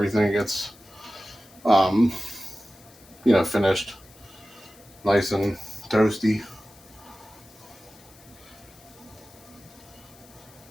gets, um, finished, nice and toasty.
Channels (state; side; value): noise; left; hiss, 24 dB below the sound